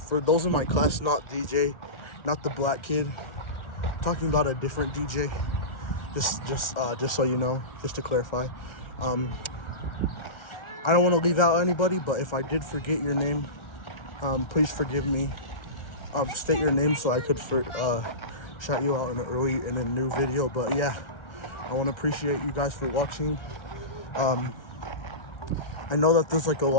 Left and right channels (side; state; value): right; late; 1.4 ms